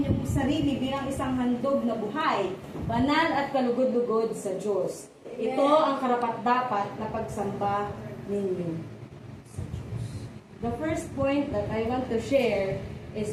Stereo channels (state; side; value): identical; both; correlation 1.00